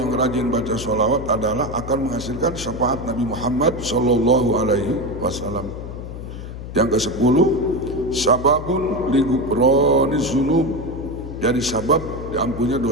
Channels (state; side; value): noise; left; hum, 10 dB below the sound